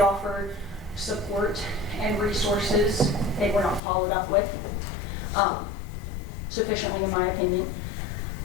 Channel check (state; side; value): drops out; right; at 3.8 s